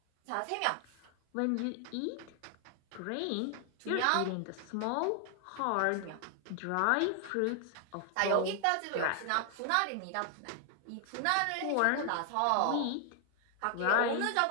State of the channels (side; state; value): both; different; correlation 0.00